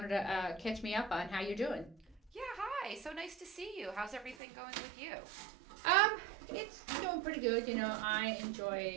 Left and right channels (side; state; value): left; drops out; at 4.4 s